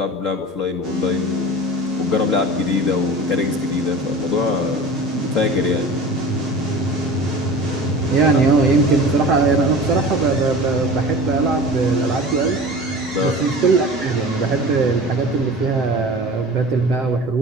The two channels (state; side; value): normal; both; correlation 0.37